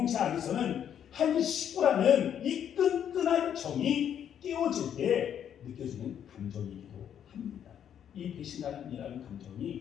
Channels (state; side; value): quieter; right; 9.2 dB